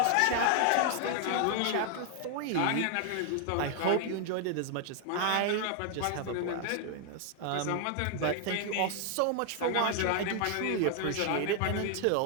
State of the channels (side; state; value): both; different; correlation 0.00